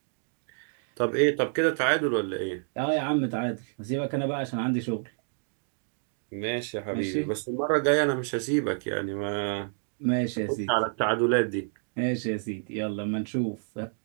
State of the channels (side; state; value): left; silent; digital silence